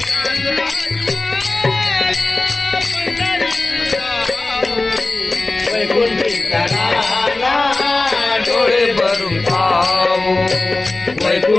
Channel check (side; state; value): right; quieter; 3.2 dB